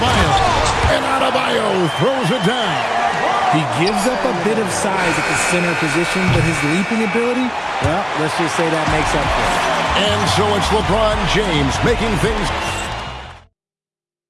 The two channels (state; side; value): identical; both; correlation 1.00